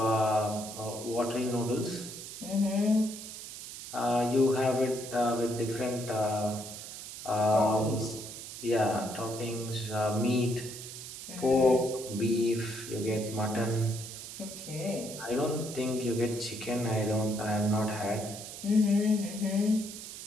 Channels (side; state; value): right; noise; hiss, 11 dB below the sound